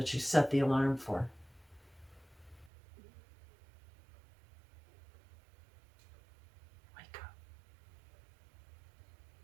you set the alarm for. Wake up.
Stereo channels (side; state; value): left; drops out; at 2.7 s